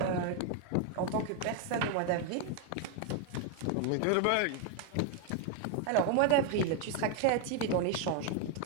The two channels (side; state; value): both; different; correlation 0.01